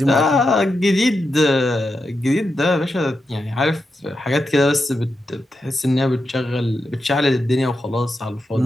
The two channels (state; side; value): normal; both; correlation 0.87